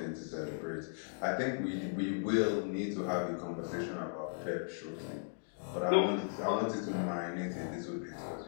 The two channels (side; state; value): right; silent; digital silence